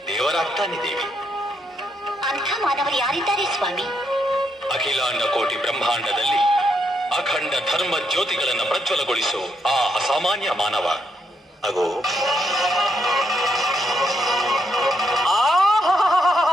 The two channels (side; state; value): both; normal; correlation 0.78